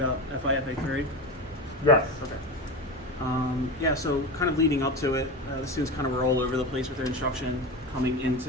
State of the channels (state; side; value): normal; both; correlation 0.23